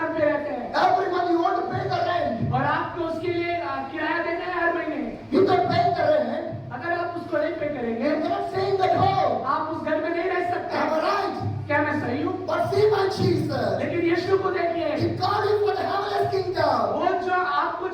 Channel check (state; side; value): identical; both; correlation 1.00